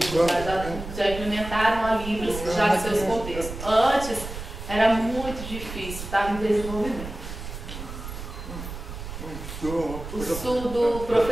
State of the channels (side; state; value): right; noise; rumble, 9 dB below the sound